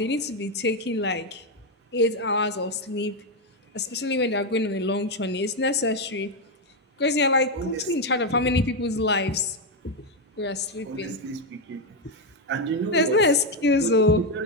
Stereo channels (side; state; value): both; normal; correlation 0.05